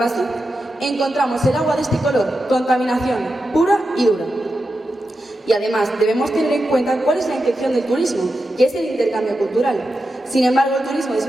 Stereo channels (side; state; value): both; normal; correlation 0.89